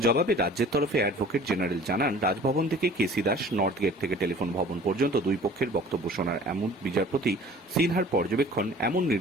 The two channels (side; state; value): both; normal; correlation 0.47